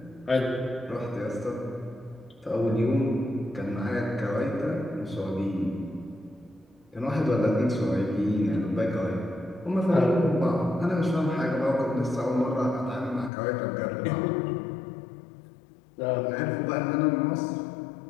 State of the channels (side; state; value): right; drops out; at 13.3 s